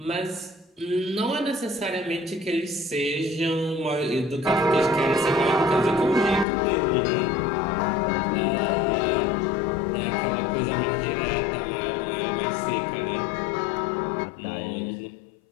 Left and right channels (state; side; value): drops out; right; at 6.5 s